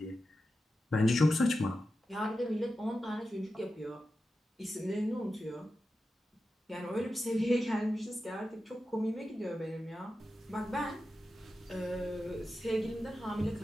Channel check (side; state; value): both; normal; correlation 0.91